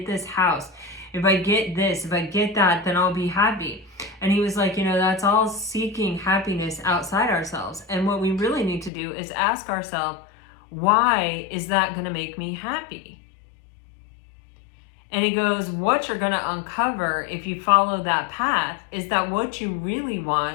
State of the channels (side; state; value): right; drops out; at 8.9 s